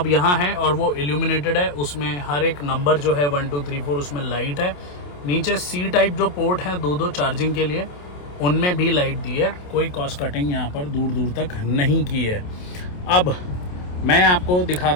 यहाँ है और वो इल्यूमिनेटेड है। उसमें हर एक नंबर जो है 1 2 3 4 उसमें लाइट है। नीचे सी टाइप जो पोर्ट हैं दो चार्जिंग के लिए, उनमें भी लाइट दी है। कोई कॉस्ट कटिंग यहाँ पर दूर दूर तक नहीं की है। अब मैं आपको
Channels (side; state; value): right; late; 28 ms